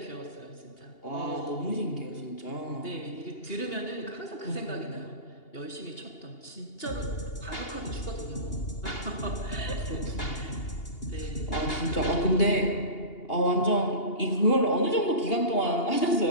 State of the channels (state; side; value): late; right; 2.8 ms